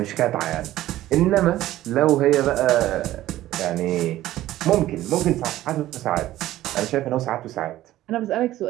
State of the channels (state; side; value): quieter; left; 14.7 dB